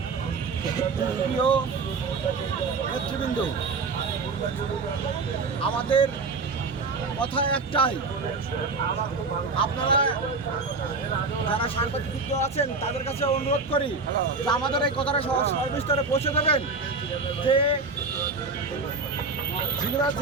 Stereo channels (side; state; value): left; quieter; 4.1 dB